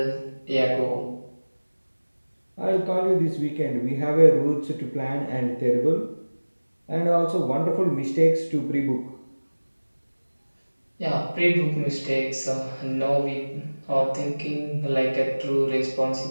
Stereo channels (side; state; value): both; inverted; correlation -1.00